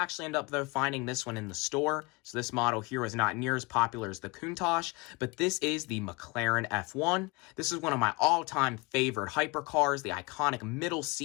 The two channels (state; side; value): quieter; right; 26.0 dB